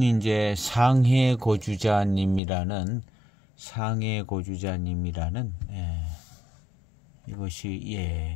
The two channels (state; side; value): drops out; right; at 2.4 s